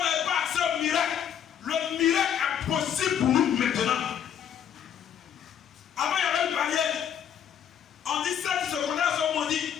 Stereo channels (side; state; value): right; quieter; 9.0 dB